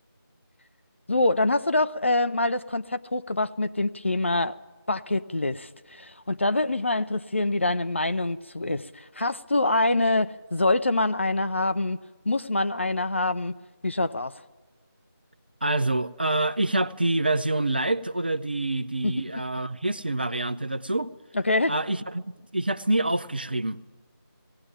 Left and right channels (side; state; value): both; inverted; correlation -0.76